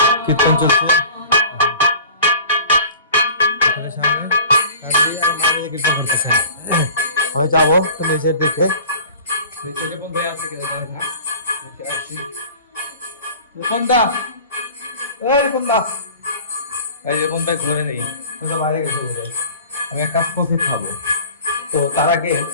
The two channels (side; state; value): both; inverted; correlation -0.42